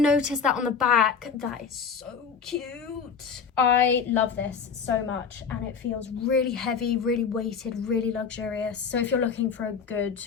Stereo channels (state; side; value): quieter; right; 6.2 dB